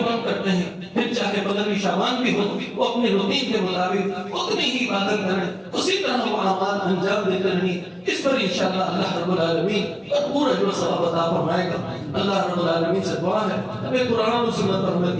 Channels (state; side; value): identical; both; correlation 1.00